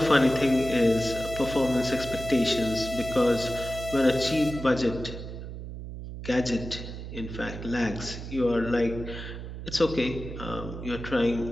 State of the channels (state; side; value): noise; right; hum, 9 dB below the sound